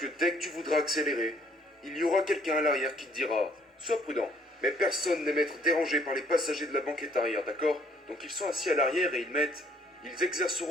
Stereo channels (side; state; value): both; normal; correlation 0.63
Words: dès que tu voudras accélérer, il y aura quelqu'un à l'arrière qui te dira « Sois prudent. » Mais personne n'aime être dérangé par les passagers de la banquette arrière, d'accord? Donc ils sont assis à l'arrière et ils